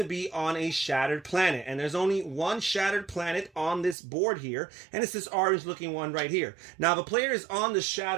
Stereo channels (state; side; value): drops out; left; at 4.0 s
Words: be on a shattered planet. And there's only one shattered planet on this board here, and it's this orange looking one right here. Now, if a player is on the